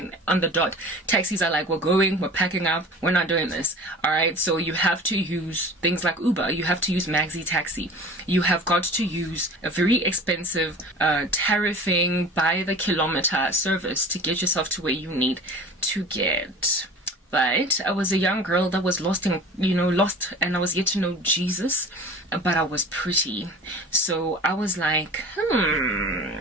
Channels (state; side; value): normal; both; correlation 0.40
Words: on the dot, taxis are like, we're going, we're packing up, we're not doing this. All right, so you have to use things like Uber, you have to use Maxi Taxi, you have got to use a very expensive tariffing by the kilometer service to get yourself to where you need to get. But I was a young girl that was lost, and I was yet to know Jesus, but I was pretty. So I was like,